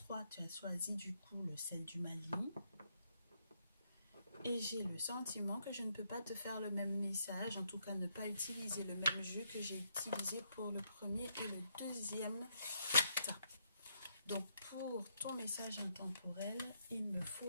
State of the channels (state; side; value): inverted; both; correlation -0.75